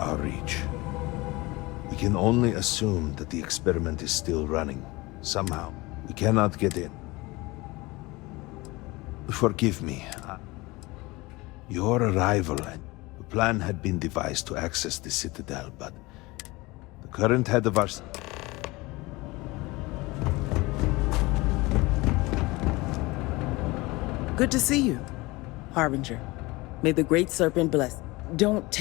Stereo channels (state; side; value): quieter; right; 22.4 dB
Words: reach. We can only assume that the experiment is still running. Somehow, we cannot get in. Forgive me. Your arrival, the plan had been devised to access the Citadel, but the current head of our... Good to see you, Harbinger. May the Great Serpent bless. Don't